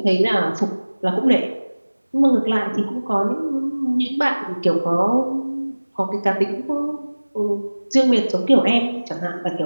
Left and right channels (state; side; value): inverted; both; correlation -1.00